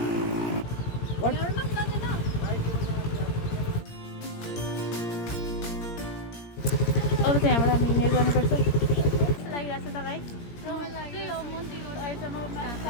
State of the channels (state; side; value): late; right; 17 ms